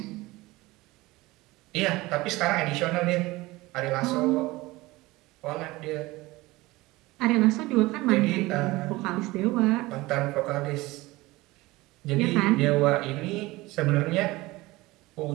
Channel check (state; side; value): quieter; left; 20.3 dB